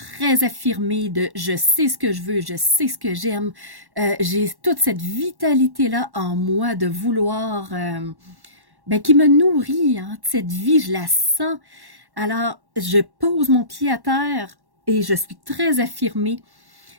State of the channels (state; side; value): late; left; 1.1 ms